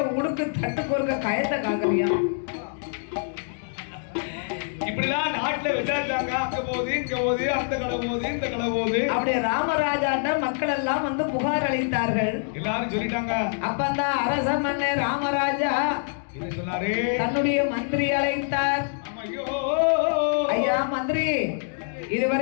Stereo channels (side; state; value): right; silent; digital silence